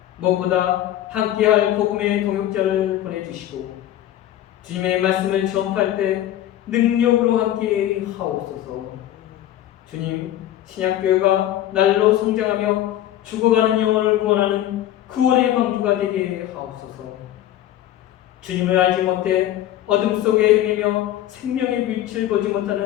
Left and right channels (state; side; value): quieter; right; 12.7 dB